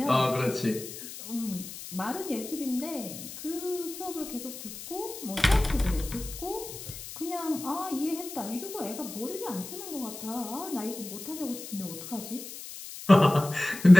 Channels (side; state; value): left; noise; hiss, 12 dB below the sound